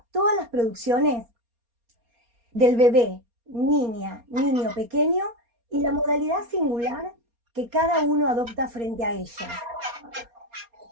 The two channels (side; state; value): left; late; 4.3 ms